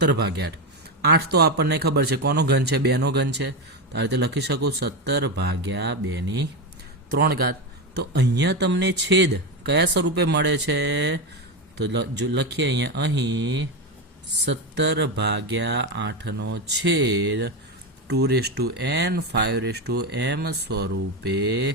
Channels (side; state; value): both; normal; correlation 0.13